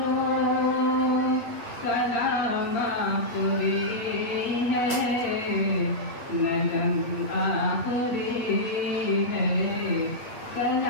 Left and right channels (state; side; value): late; right; 8.3 ms